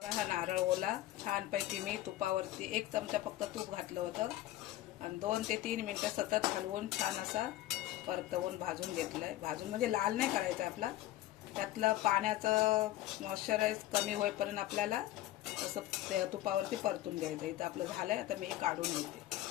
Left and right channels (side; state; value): right; quieter; 14.8 dB